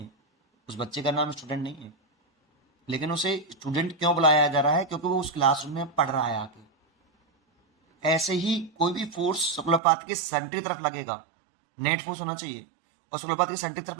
उस बच्चे का नाम स्टूडेंट नहीं है, लेकिन उसे स्टूडेंट क्यों बुलाया जा रहा है, क्योंकि वो उस क्लासरूम में पढ़ रहा है आके। ऐसे ही कोई भी फोर्स सर्कुलर पाथ के सेंटर की तरफ लगेगा, नेट फोर्स होना चाहिए, और सर्कुलर पाथ के सेंटर की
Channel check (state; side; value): drops out; left; at 9.8 s